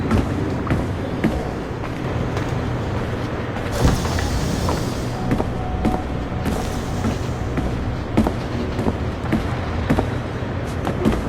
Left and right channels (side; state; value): both; identical; correlation 1.00